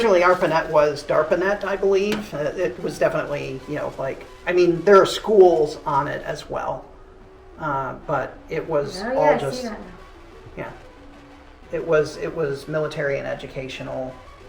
ARPANET was DARPANET, I believe. It was definitely, you know, like, I mean, there are schools on it as well. But it was Oh, yeah, all I just, see that now. yeah. It was military and educational.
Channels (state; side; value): identical; both; correlation 1.00